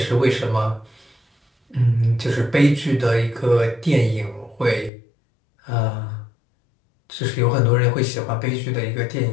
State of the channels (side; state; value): right; drops out; at 4.9 s